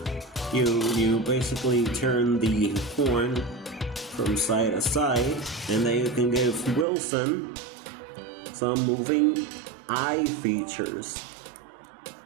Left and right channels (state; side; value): drops out; left; at 6.9 s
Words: you basically turn the horn from side to side, and then you can give Wilson some moving eye features.